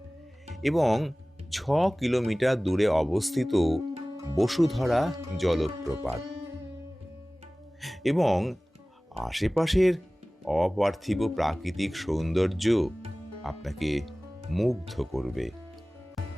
এবং 6 কিলোমিটার দূরে অবস্থিত বসুধারা জলপ্রপাত। এবং আশেপাশের অপার্থিব প্রাকৃতিক সৌন্দর্য আপনাকে মুগ্ধ করবে।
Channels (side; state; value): both; normal; correlation 0.98